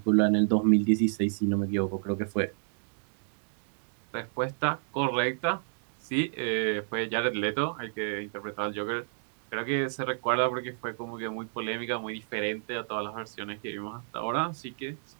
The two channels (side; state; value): left; silent; digital silence